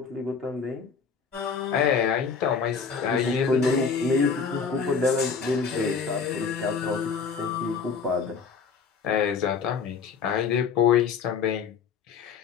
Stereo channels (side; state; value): right; quieter; 5.8 dB